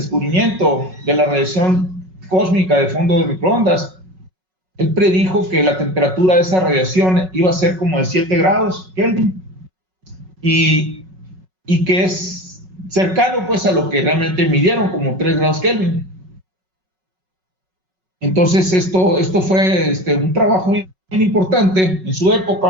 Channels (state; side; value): late; left; 5.4 ms